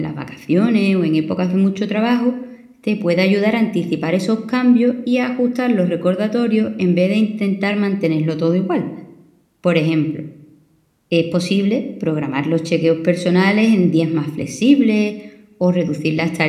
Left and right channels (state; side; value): identical; both; correlation 1.00